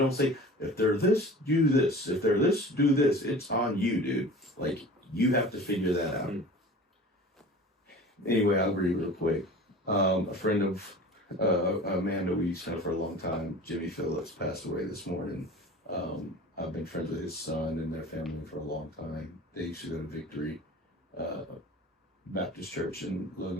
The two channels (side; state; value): both; normal; correlation 0.40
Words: say if they're this, do this. If they're this, do this. It's on you, dude. Like you have to figure that out. Anyway, I'll read real quick. A friend of Amanda we used to know for a long time, Jimmy Phillips, passed away this morning. I've been friends with his son and their family for a long time. They used to go to Victory Baptist Church in